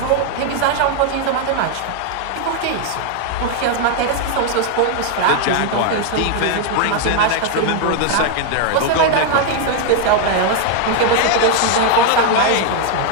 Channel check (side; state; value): both; different; correlation 0.00